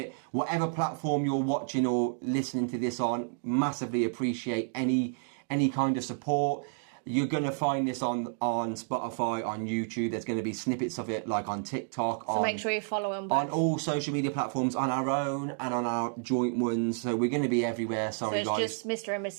whatever platform you're watching or listening to this on. Massively appreciate any kind of support. You're going to find this on Spotify, on YouTube. There's going to be snippets of it, like on TikTok. So make sure you follow them both. On all social media platforms, on our own and on our joint ones. So we're going to be everywhere. Sorry, so it's guys. just Mr. and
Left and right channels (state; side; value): silent; left; digital silence